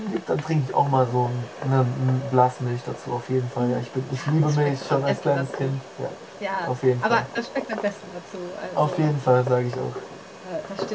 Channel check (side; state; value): both; identical; correlation 1.00